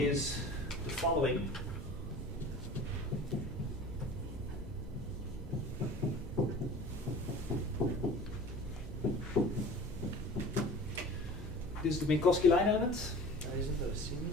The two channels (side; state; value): both; normal; correlation 0.41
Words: the following. This is the Minkowski line element.